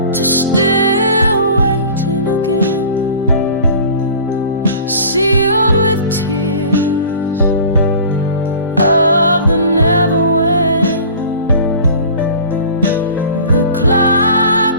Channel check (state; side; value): inverted; both; correlation -0.42